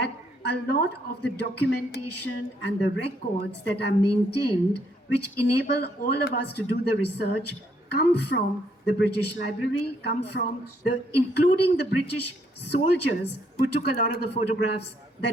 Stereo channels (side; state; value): both; normal; correlation 0.71